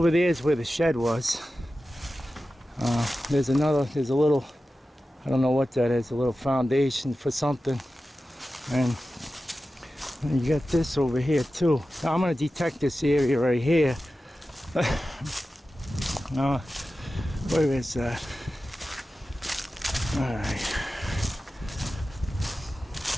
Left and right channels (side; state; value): both; normal; correlation 0.94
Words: there is where the shed was. There's a little, I don't know what that is, a little foundation for something. And you got this over here too. Now I'm going to detect this area right here. Where is that? Alright.